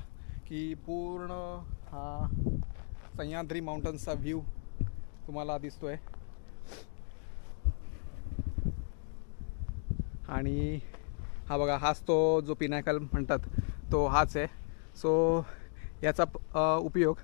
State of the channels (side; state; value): right; silent; 54 dB below the other